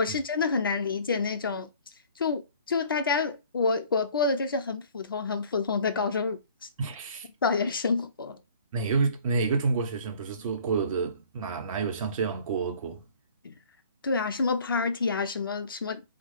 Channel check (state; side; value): inverted; both; correlation -0.51